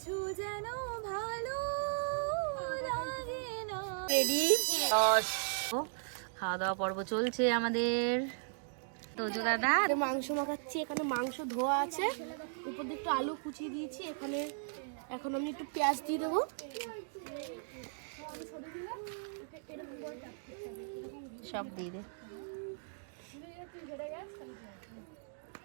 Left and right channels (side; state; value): left; silent; digital silence